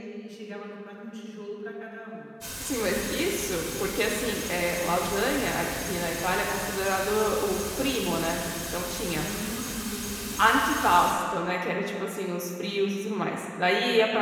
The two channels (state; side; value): identical; both; correlation 1.00